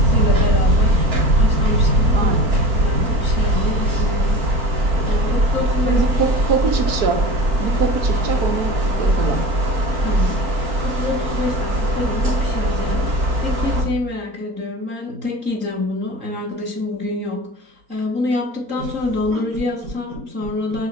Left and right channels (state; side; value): late; left; 4.5 ms